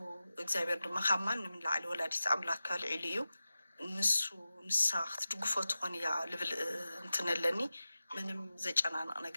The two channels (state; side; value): inverted; both; correlation -0.95